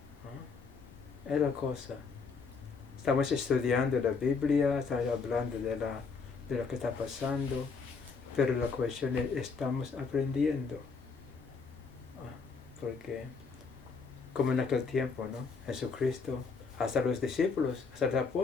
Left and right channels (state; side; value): quieter; right; 4.9 dB